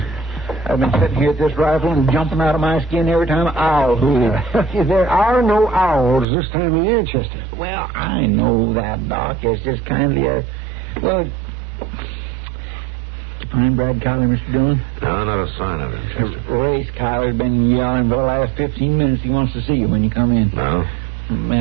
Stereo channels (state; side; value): drops out; left; at 6.2 s